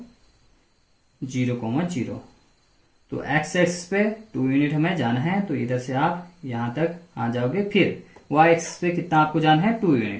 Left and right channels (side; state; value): both; identical; correlation 1.00